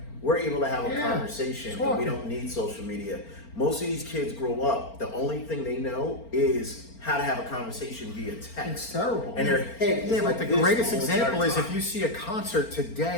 We're able to have a Yeah. conversation and Talk. we don't need social media. Most of these kids grow up, the only thing they know is how to have a conversation via text. It's terrible. And their head is Yeah, like but this the greatest whole example entire is if time. you see a concert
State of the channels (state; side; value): late; right; 4.4 ms